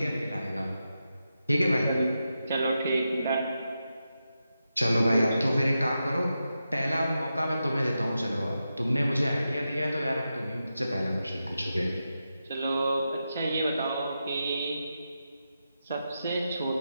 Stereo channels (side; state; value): both; inverted; correlation -0.88